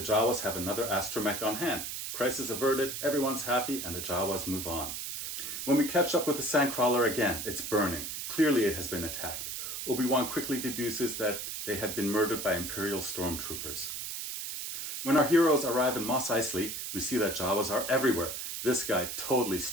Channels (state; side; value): noise; right; hiss, 5 dB below the sound